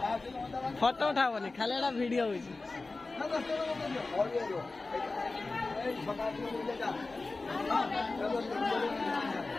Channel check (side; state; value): right; quieter; 3.5 dB